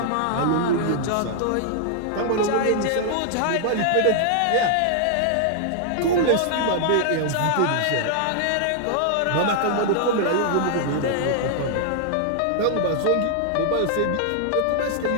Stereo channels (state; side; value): different; both; correlation -0.01